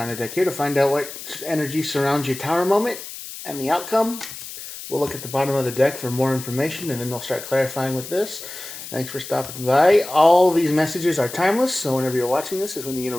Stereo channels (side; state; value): left; noise; hiss, 12 dB below the sound